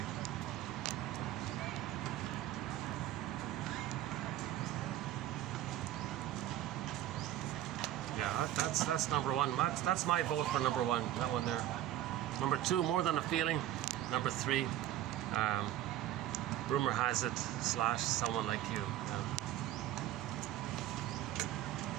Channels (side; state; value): left; quieter; 12.9 dB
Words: Yeah, that's number one. That's my vote for number one. That one there. Number two, More Than a Feeling. Number three, Rumor Has It / Someone Like You. Yeah.